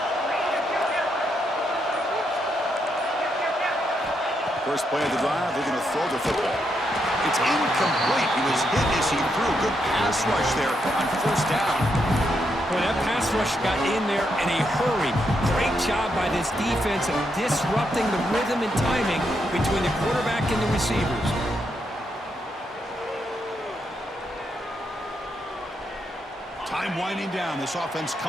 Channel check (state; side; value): normal; both; correlation 0.80